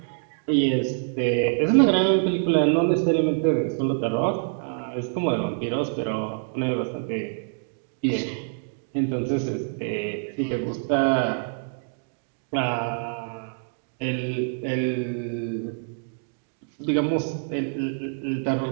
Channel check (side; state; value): left; silent; digital silence